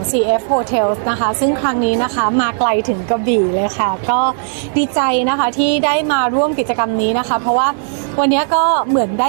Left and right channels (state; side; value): silent; left; digital silence